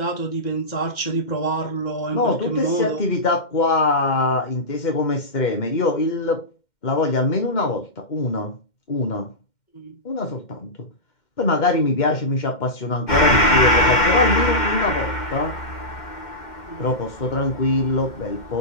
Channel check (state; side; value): late; right; 2.1 ms